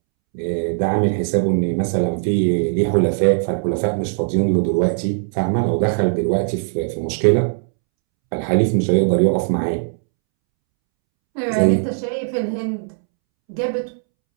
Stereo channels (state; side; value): silent; left; 66 dB below the other